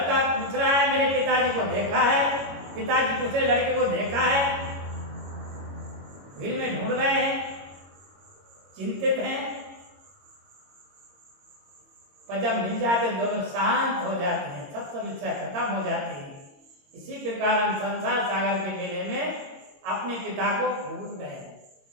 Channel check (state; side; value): late; left; 22 ms